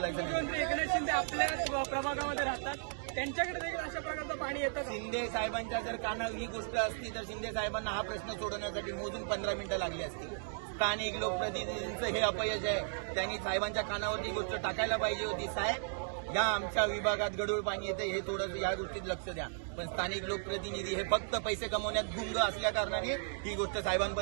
नाही. मुख्यमंत्री एकनाथ शिंदे आपल्याच प्रभागामध्ये राहतात, त्यांच्याकडे देखील अशा प्रकारचं पाणी येतं. शिंदे साहेबांच्या जर कानावर ही गोष्ट असती तर शिंदे साहेबांना हा प्रश्न सोडवण्यासाठी मोजून 15 मिनिटं लागली असती. स्थानिक लोकप्रतिनिधींचं हे अपयश आहे. त्यांनी साहेबांच्या कानावर ही गोष्ट टाकायला पाहिजे होती. साहेब, या आमच्या विभागात गढूळ पाणी येते, हे थोडं या गोष्टीत लक्ष द्या. पण स्थानिक लोकप्रतिनिधी हे फक्त पैसे कमवण्यात गुंग असल्या कारणाने ही गोष्ट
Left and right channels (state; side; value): silent; left; digital silence